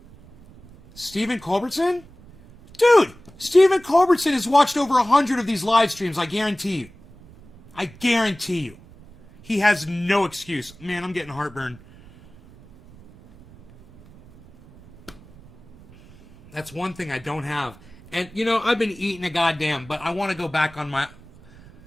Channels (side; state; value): right; noise; rumble, 23 dB below the sound